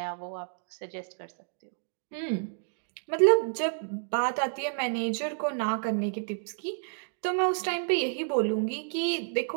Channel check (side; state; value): left; silent; digital silence